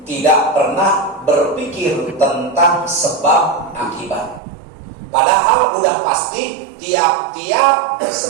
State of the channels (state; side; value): drops out; left; at 4.4 s